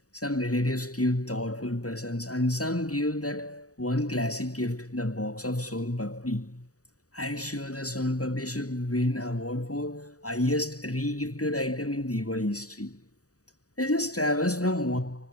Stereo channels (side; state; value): right; late; 0.66 ms